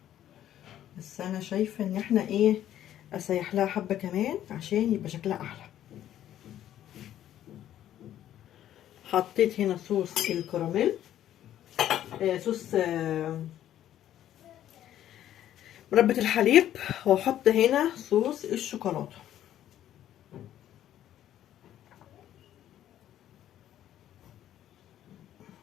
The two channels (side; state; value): right; quieter; 11.8 dB